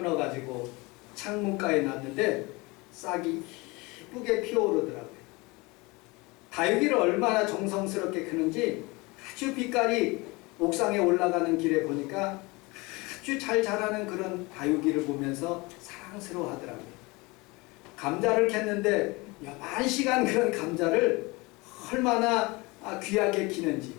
창문가에 놨는데 싹이 예쁘게 피어오르더라고요. 다육이를 얼마나 정성스럽게 크는지 아주 빛깔이 옥상에 올라가는 길에 보니까 아주 잘 자라는 그런 다육이를 보면서 사랑스러워 하더라고요. 감자를 캤는데 여만 시간 그런 감자를 얼마나 귀하게 키는지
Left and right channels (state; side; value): quieter; right; 24.8 dB